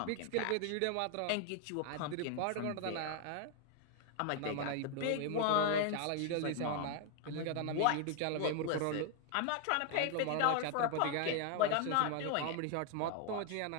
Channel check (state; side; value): different; both; correlation 0.00